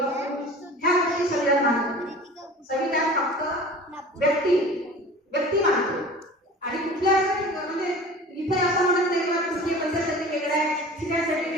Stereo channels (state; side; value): normal; both; correlation 0.40